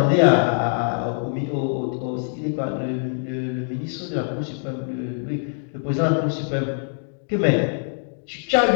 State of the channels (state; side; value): silent; right; digital silence